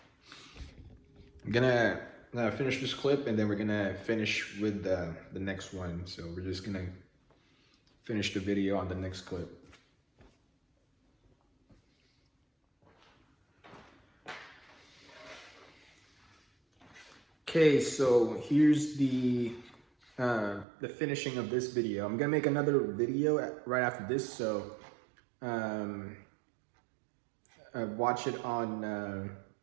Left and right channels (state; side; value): drops out; left; at 20.7 s